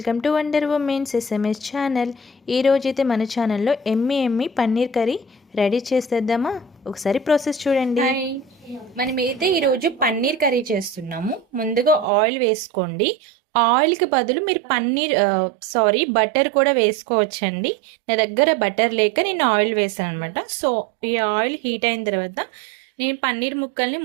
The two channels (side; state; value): left; drops out; at 12.1 s